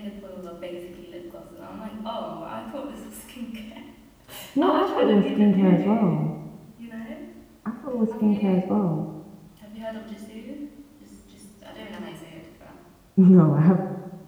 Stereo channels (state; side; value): identical; both; correlation 1.00